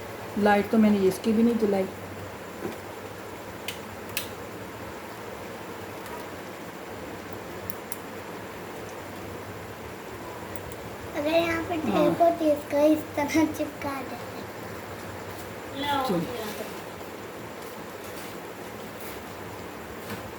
लाइट तो मैंने इसकी भी नहीं जलाई। अगर यहाँ पे टेप होती है इसका इस तरह चिपका देते।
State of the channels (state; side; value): identical; both; correlation 1.00